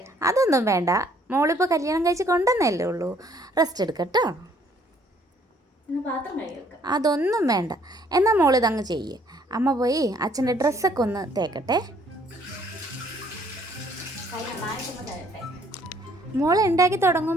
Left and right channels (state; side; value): normal; both; correlation 0.63